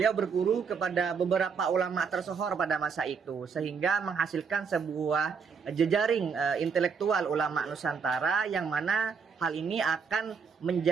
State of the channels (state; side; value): quieter; left; 5.9 dB